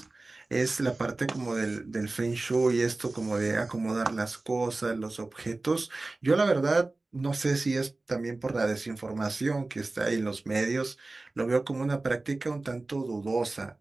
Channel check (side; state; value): left; quieter; 3.2 dB